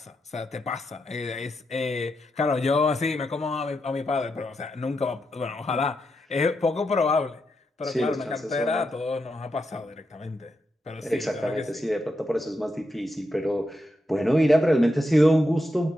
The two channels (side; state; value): both; normal; correlation 0.84